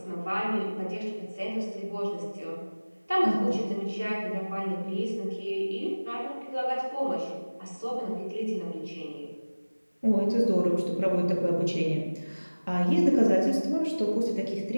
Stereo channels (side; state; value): both; inverted; correlation -1.00